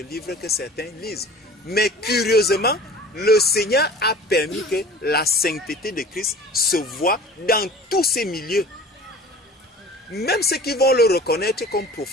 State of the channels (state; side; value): normal; both; correlation 0.43